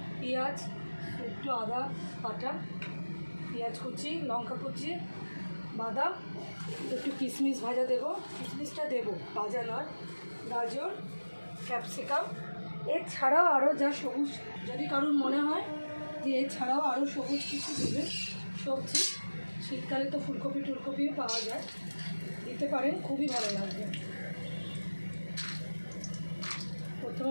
পেঁয়াজ, একটু আদা বাটা, পেঁয়াজ কুচি, লঙ্কা কুচি, বাদাম, একটু কিশমিশ ভাজা দেবো। কিশমিশটা দেবো, ভাজা নয়। গাজর, ক্যাপসিকাম, এছাড়াও আরও যা সবুজ, যদি কারোর মনে হয় যে এছাড়াও আরও সবুজ কিছু দেবে সবজি, শীতকালে তো ফুলকপি টুলকপিও পাওয়া যায়, দিতে পারেন, খুবই ভালো লাগবে।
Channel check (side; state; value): both; inverted; correlation -1.00